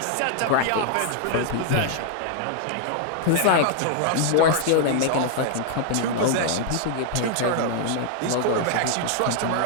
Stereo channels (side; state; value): both; different; correlation 0.00